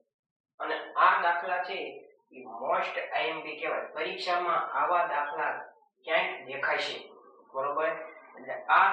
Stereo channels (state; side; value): identical; both; correlation 1.00